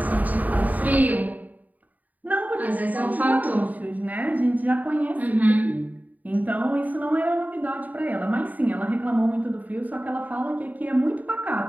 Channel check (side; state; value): left; late; 0.077 ms